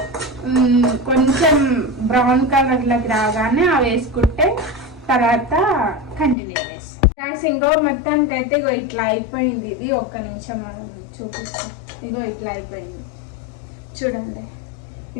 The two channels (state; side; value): drops out; right; at 6.4 s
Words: కొంచెం బ్రౌన్ కలర్ లోకి రాగానే అవి వేసుకుంటే తర్వాత కంటిన్యూ చేస్తాం. ఇంకో మొత్తానికి అయితే ఇగో ఇట్లా అయిపోయింది. ఇది ఒక్క నిమిషం మనం చూపిస్తాం. ఇగో ఇట్లా అయిపోయింది చూడండి.